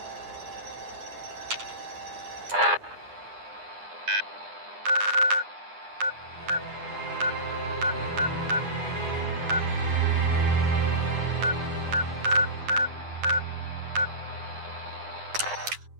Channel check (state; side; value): late; left; 9.8 ms